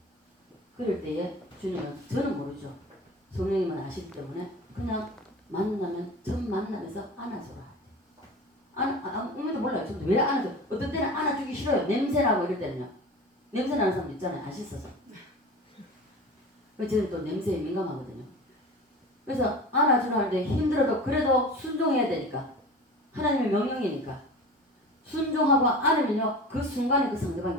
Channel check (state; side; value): normal; both; correlation 0.35